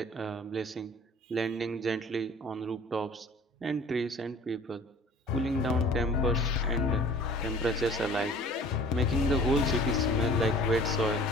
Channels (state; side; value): normal; both; correlation 0.47